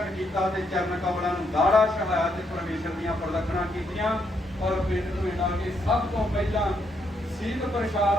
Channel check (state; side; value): normal; both; correlation 0.76